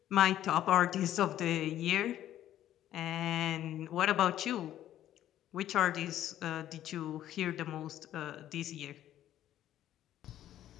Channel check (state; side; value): quieter; right; 12.2 dB